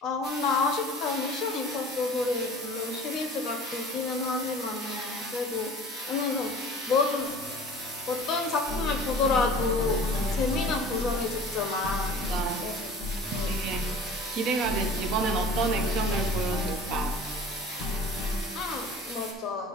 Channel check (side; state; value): both; normal; correlation 0.43